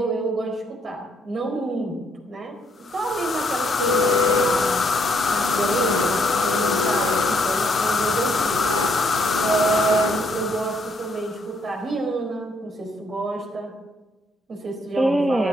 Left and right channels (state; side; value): normal; both; correlation 0.71